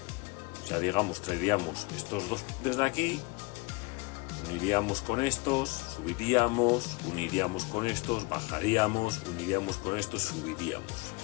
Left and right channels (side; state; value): right; quieter; 26.1 dB